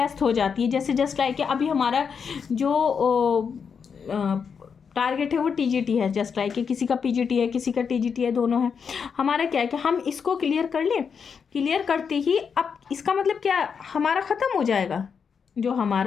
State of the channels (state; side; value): quieter; right; 6.4 dB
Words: हो जाती है। जैसे जस्ट लाइक अभी हमारा जो टारगेट है वो TGT है, जस्ट लाइक किसी का PGT है, किसी का TGT है, दोनों है। हमारा क्या है कि हम इसको क्लियर कर लें, क्लियर करते ही अब इसका मतलब क्या, हमारा ख़त्म हो जाएगा जो